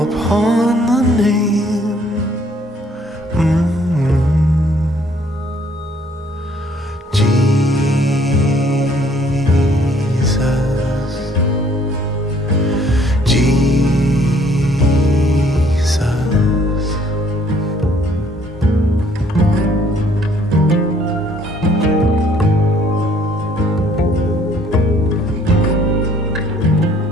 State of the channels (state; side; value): normal; both; correlation 0.62